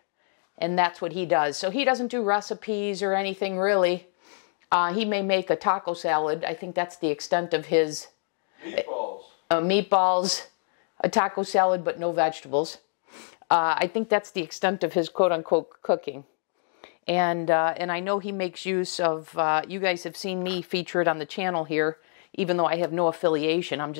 and that's what he does. So he doesn't do recipes or anything really. He may make a taco salad. I think that's the extent of his meatballs, a taco salad, but no vegetables. I think that's the extent of his quote-unquote cooking. And I know he makes use of, you guys have seen me feature it on the channel here, even though I have no affiliation. I'm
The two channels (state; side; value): silent; right; digital silence